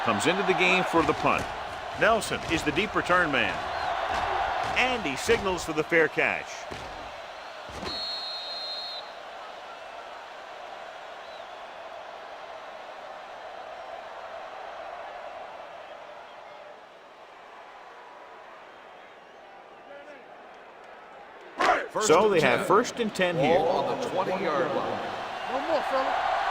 comes into the game for the punt. Nelson is the deep return man. And he signals for the fair catch. So they have 1st and 10 here. Ball on the 20-yard line. No more, fella.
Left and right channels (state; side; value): identical; both; correlation 1.00